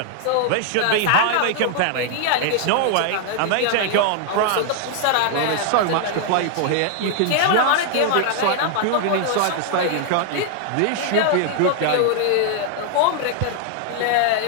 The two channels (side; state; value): both; different; correlation 0.00